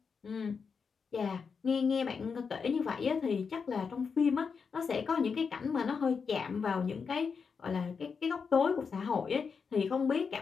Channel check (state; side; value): quieter; right; 5.7 dB